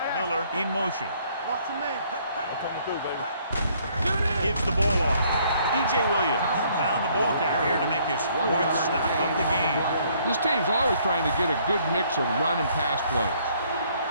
Miller in motion. Watch the man. I'm coming through, baby. Gives the ball off. DJ Williams found the ball carrier to make his 4th stop of the game. This team's always trying to get a good mix of run and pass plays.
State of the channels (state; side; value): inverted; both; correlation -0.64